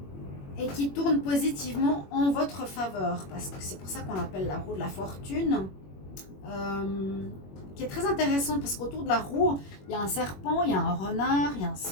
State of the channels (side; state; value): right; late; 21 ms